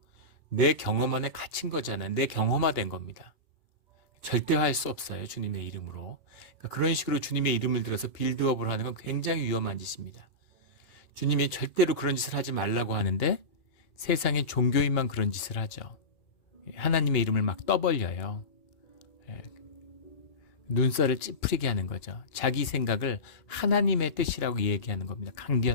내 경험 안에 갇힌 거잖아요. 내 경험화된 겁니다. 절대화할 수 없어요. 주님의 이름으로. 그러니까 그런 식으로 주님의 이름을 들어서 빌드업을 하는 건 굉장히 위험한 짓입니다. 주님이 절대로 그런 짓을 하지 말라고 하는데 세상의 종교인만 그런 짓을 하죠. 하나님의 이름을 막 떠벌려요. 눈살을 찌푸리게 하는 거죠. 자기 생각을 하나님의 뜻이라고 얘기하는 겁니다.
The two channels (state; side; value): late; right; 2.8 ms